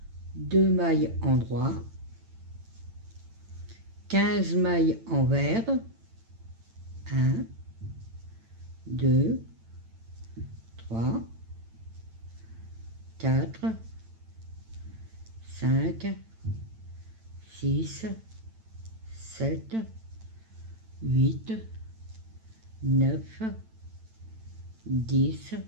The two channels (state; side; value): late; left; 9.0 ms